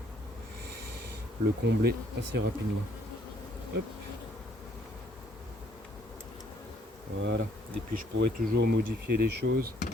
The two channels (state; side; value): normal; both; correlation 0.64